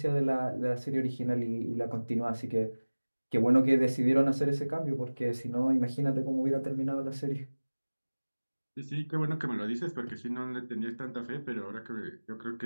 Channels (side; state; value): both; inverted; correlation -1.00